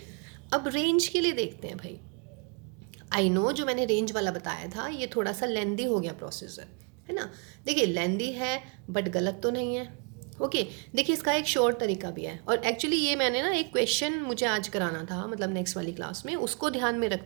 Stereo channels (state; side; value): quieter; left; 36.4 dB